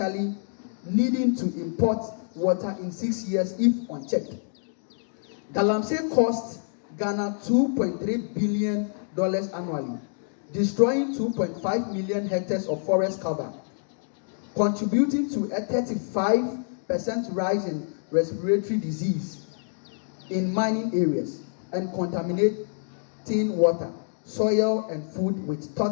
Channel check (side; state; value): right; silent; digital silence